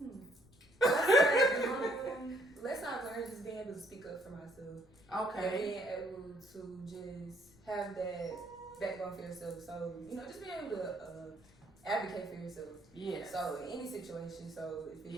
Lesson I've learned is just being able to speak up for myself. And Okay. being able to just have that backbone for yourself. So, just being able to advocate for yourself. Yes. So in any situation, so if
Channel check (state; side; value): noise; left; rumble, 27 dB below the sound